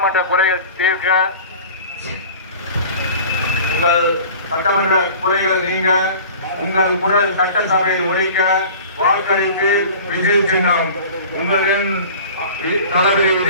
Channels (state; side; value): inverted; both; correlation -0.42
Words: குறைகள் தீர்க்க, உங்கள் சட்டமன்ற குறைகள் நீங்க, உங்கள் குரல் சட்டசபையில் ஒழிக்க வாக்களிப்பு விஜய் சின்னம். உங்களின் தளபதி